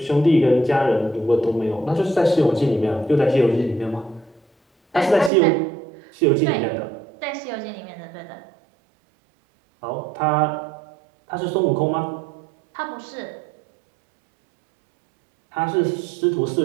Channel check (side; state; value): left; drops out; at 5.3 s